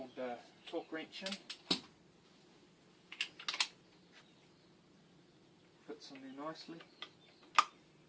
torque wrench in. Fits in there nicely,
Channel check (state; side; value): identical; both; correlation 1.00